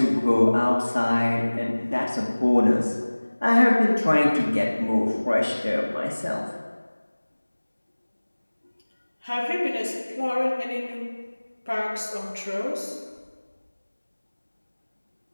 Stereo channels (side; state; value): both; inverted; correlation -1.00